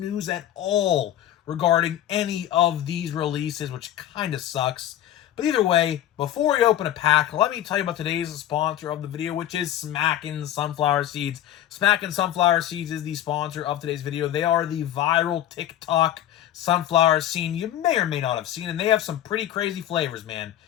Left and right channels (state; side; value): quieter; right; 12.0 dB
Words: at all regarding any of these releases, which kind of sucks. But either way, before we open a pack, let me tell you about today's sponsor of the video, which is Smackin' Sunflower Seeds. Smackin' Sunflower Seeds is the sponsor of today's video. They are the viral TikTok sunflower scene you may or may not have seen, and they have some pretty crazy flavors, man.